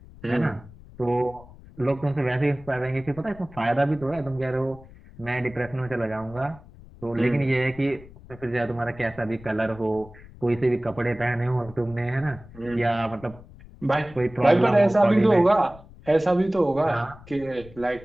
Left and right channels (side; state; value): left; noise; rumble, 20 dB below the sound